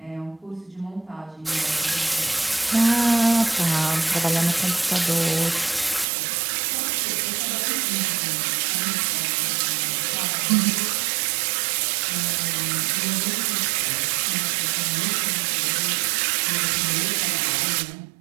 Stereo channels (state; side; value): drops out; left; at 6.1 s